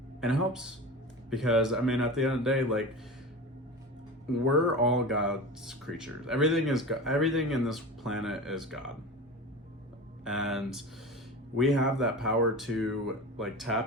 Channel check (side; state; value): both; normal; correlation 0.30